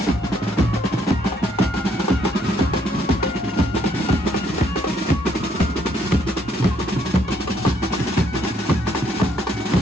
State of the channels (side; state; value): both; normal; correlation 0.69